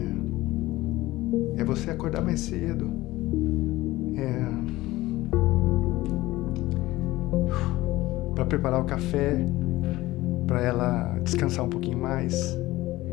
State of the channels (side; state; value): right; quieter; 17.9 dB